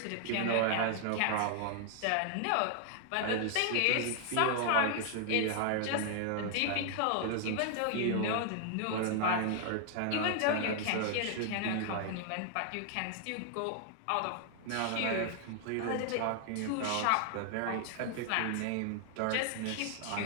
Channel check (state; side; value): different; both; correlation 0.00